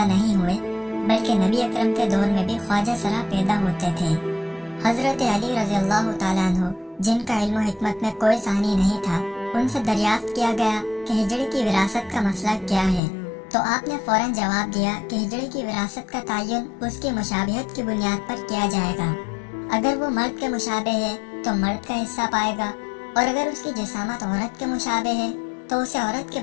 नहीं हुए, बल्कि नबी अकरम के दौर में भी ख्वाजा सरा पैदा होते थे। हजरत अली रज़ियल्लाहु ताला अन्हु, जिनका इल्म हिकमत में कोई सानी नहीं था, उनसे दरियाफ्त किया गया कि हिजड़े की विरासत का मसला क्या है। तो आपने फौरन जवाब दिया कि हिजड़े की विरासत का तयन उसकी मुशाबिहत की बुनियाद पर किया जाएगा। अगर वो मर्द के मुशाबे है तो मर्द का हिस्सा पाएगा, और अगर उसकी जिसामत औरत के मुशाबे है तो उसे औरत के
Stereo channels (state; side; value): drops out; right; at 13.0 s